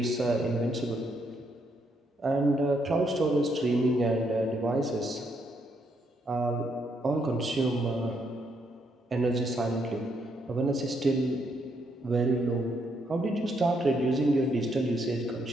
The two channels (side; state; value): both; normal; correlation 0.75